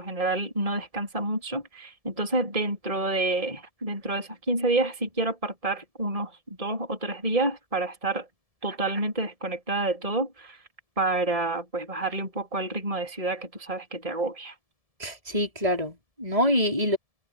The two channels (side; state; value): left; late; 1.7 ms